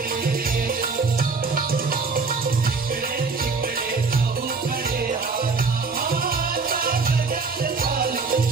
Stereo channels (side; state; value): left; quieter; 4.5 dB